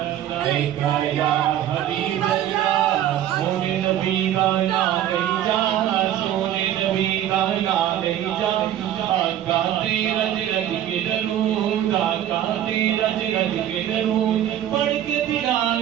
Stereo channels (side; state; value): left; quieter; 11.5 dB